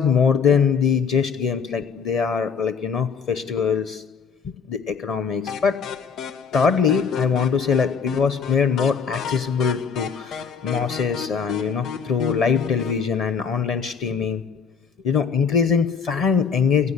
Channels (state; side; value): quieter; right; 6.1 dB